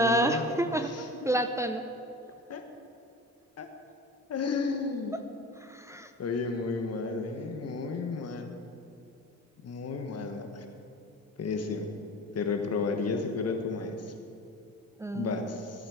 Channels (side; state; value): both; normal; correlation 0.36